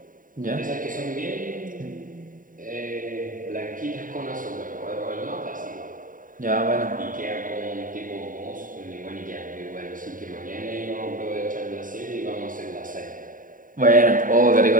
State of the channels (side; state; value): left; late; 0.39 ms